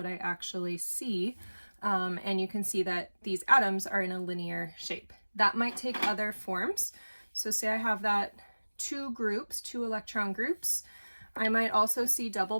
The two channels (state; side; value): inverted; both; correlation -1.00